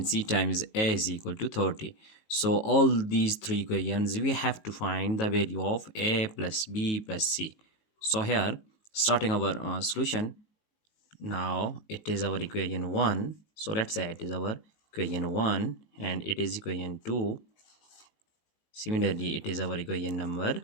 c times a is equal to 30. So all these three equations we have to find the value of a plus b plus c. So here starting our solution. Now it is our equation 1, so let's say it is our equation 1 and it is equation 2. Similarly, it is our equation number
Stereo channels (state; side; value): late; right; 19 ms